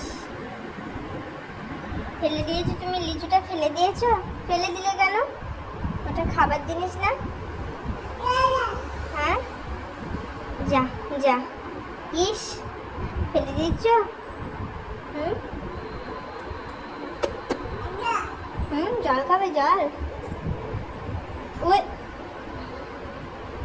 ফেলে দিয়েছো তুমি, লিচুটা ফেলে দিয়েছো। ফেলে দিলে কেন? ওটা খাবার জিনিস না। হ্যাঁ, যা যা। ইস, ফেলে দিয়েছ। হুম জল খাবে, জল। ওই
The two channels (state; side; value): identical; both; correlation 1.00